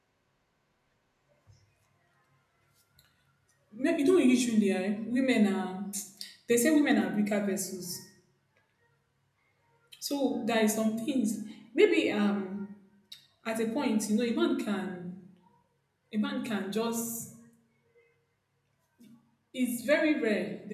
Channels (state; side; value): identical; both; correlation 1.00